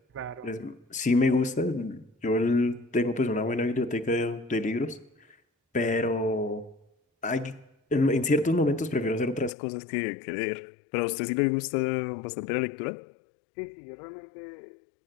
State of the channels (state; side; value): drops out; right; at 9.5 s